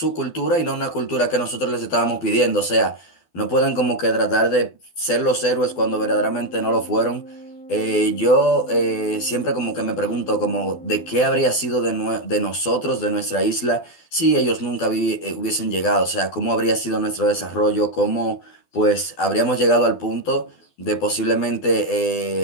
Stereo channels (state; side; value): late; right; 12 ms